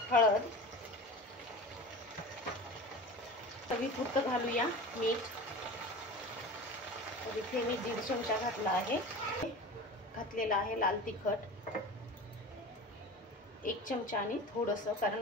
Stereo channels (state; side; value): normal; both; correlation 0.33